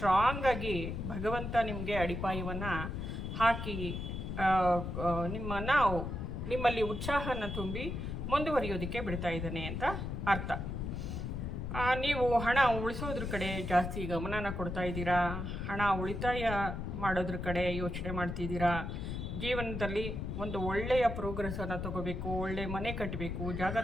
ಭಗವಂತ ನಿಮಗೆ ಅಡಿಪಾಯವನ್ನು ಹಾಕಿ ನಿಮ್ಮಲ್ಲಿ ಉತ್ಸಾಹನ ತುಂಬಿ ಮುಂದುವರಿಯೋದಕ್ಕೆ ಬಿಡ್ತಾ ಇದ್ದಾನೆ ಅಂತ ಅರ್ಥ. ನೀವು ಹಣ ಉಳಿಸೋದ್ರ ಕಡೆ ಜಾಸ್ತಿ ಗಮನನ ಕೊಡ್ತಾ ಇದ್ದೀರಾ, ಹಣ ಉಳಿತಾಯ ಮಾಡೋದ್ರ ಕಡೆ ಯೋಚನೆ ಮಾಡ್ತಿದ್ದೀರಾ. ಜೀವನದಲ್ಲಿ ಒಂದು ಒಳ್ಳೆಯ ಪ್ರೋಗ್ರೆಸ್ಸನ್ನು ತಗೋಬೇಕು, ಒಳ್ಳೆಯ ಮನೆ ಕಟ್ಟಬೇಕು, ಜಾಗ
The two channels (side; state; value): left; noise; rumble, 4 dB below the sound